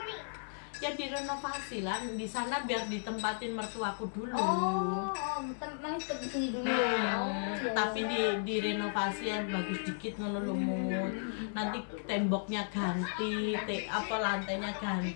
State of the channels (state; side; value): silent; right; digital silence